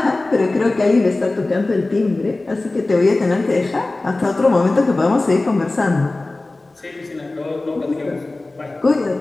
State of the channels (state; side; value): quieter; right; 3.0 dB